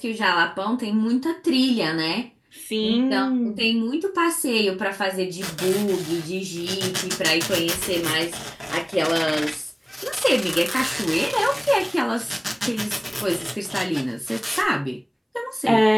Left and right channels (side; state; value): both; identical; correlation 1.00